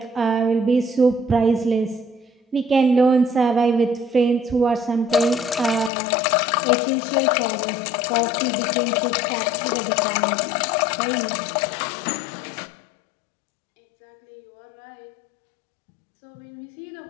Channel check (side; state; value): right; drops out; at 5.9 s